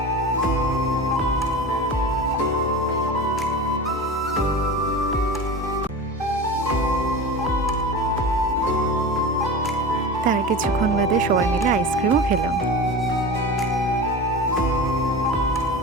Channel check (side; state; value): both; normal; correlation 0.30